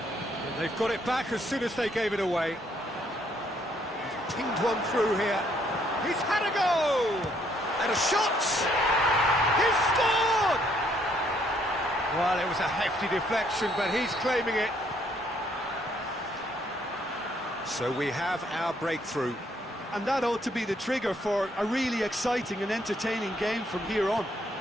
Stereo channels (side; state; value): both; normal; correlation 0.68